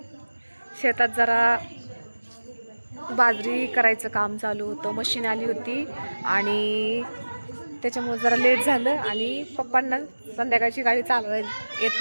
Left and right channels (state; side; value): inverted; both; correlation -1.00